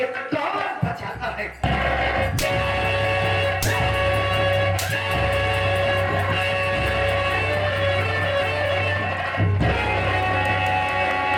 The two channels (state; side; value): identical; both; correlation 1.00